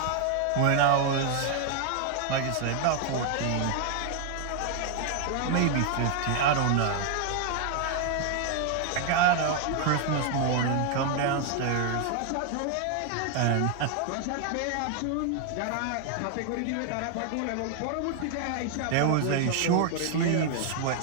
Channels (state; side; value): different; both; correlation 0.00